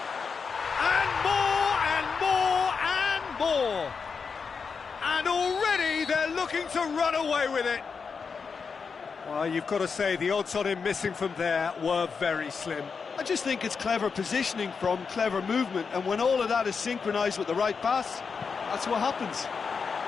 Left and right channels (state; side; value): quieter; right; 5.5 dB